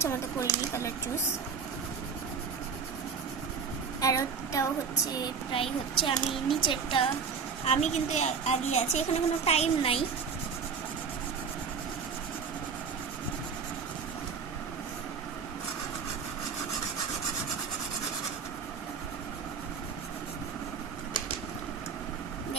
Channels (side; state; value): left; quieter; 5.9 dB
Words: মতো করিনি কালার চুজ। আর ওটাও হচ্ছে প্রায় হচ্ছে আমি নিচেরটা আমি কিন্তু আগে আছি, এখানে কোনো টাইম নাই।